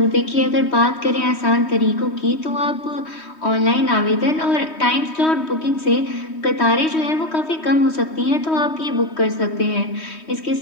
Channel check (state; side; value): late; right; 3.2 ms